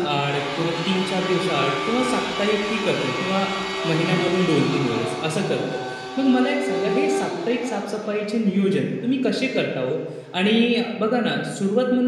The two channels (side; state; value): both; identical; correlation 1.00